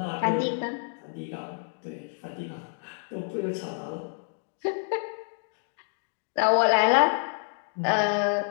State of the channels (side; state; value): right; silent; 59 dB below the other